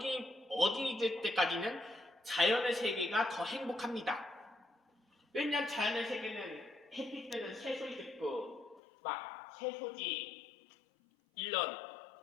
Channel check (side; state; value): right; drops out; at 8.8 s